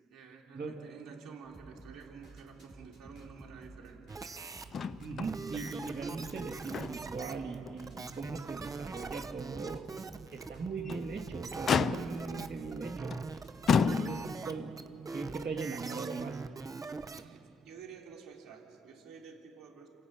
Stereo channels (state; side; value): normal; both; correlation 0.73